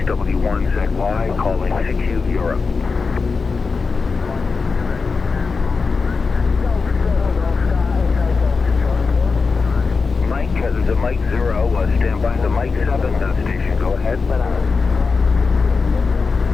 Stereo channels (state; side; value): quieter; right; 4.6 dB